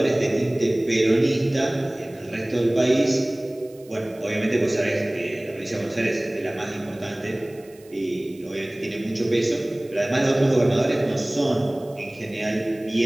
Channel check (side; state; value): right; noise; hiss, 27 dB below the sound